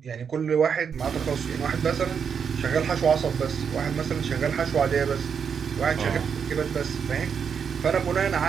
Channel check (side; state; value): left; quieter; 6.8 dB